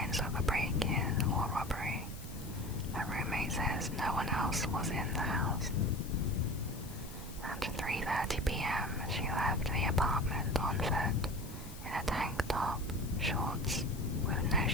of a break-in or robbery. Her roommate says no one else was in the house. At 3:30 p.m., she left the apartment on foot, in a tank top, shorts, with no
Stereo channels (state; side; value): noise; left; hiss, 18 dB below the sound